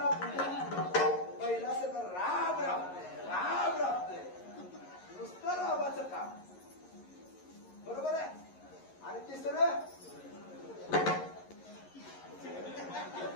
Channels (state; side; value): late; right; 11 ms